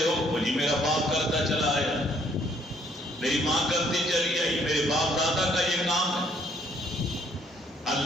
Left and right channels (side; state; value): both; normal; correlation 0.65